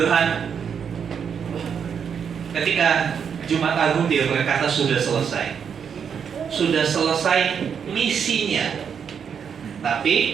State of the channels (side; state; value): left; quieter; 7.2 dB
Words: ketika Jumat Agung dia berkata sudah selesai. Sudah selesai misinya.